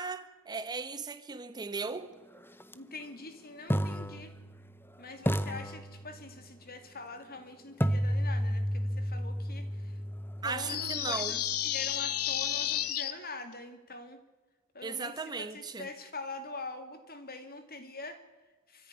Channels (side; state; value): both; normal; correlation 0.51